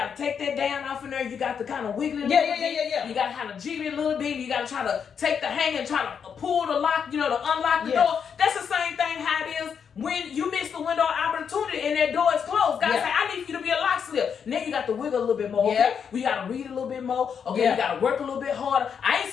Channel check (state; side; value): quieter; right; 7.1 dB